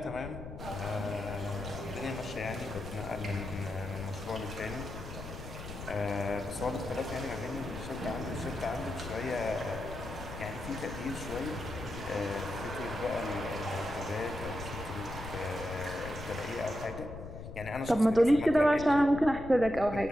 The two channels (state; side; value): noise; left; rumble, 10 dB below the sound